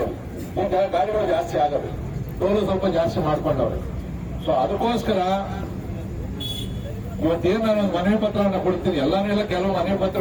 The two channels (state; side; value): identical; both; correlation 1.00